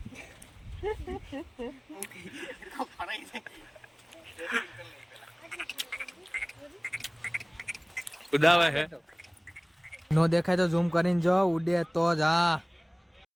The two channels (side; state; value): both; identical; correlation 1.00